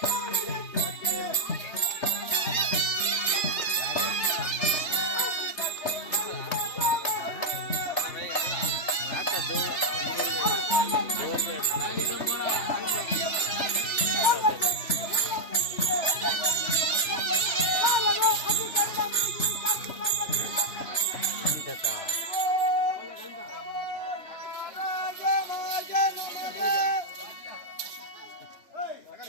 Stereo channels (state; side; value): late; right; 3.3 ms